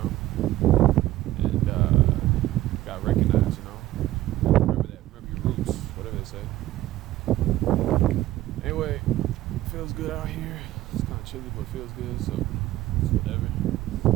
And got recognized. Remember your roots, whatever they say. Anyway, feels good out here. It's kind of chilly, but it feels good, so it's whatever.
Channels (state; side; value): quieter; left; 15.2 dB